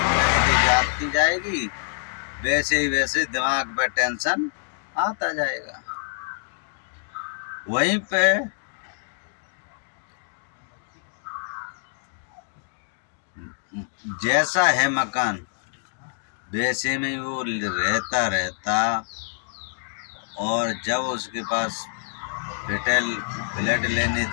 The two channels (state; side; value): silent; right; digital silence